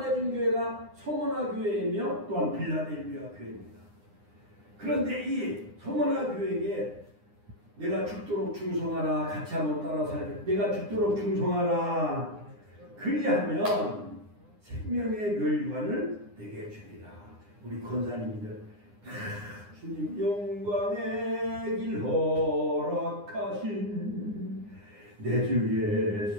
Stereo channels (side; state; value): left; late; 9.8 ms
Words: 해준 교회가 소모나 교회이며 또한 빌라델비아 교회입니다. 그런데 이 소모나 교회에게 내가 죽도록 충성하라. 같이 한번 따라 살게. 내가 죽도록 충성하라. 그리하면 생명의 멸관을 내게 주리라. 우리 권사님들 주님 영광의 길 허락하신 내 주